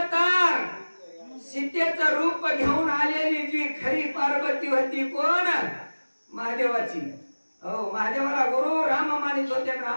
तर सीतेचं रूप घेऊन आलेली जी खरी पार्वती होती कोण? महादेवाची. हो महादेवाला गुरु राम मानित होते,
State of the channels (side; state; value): both; inverted; correlation -1.00